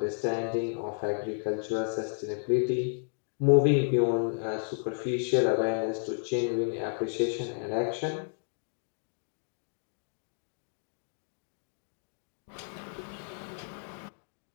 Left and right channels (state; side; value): silent; right; digital silence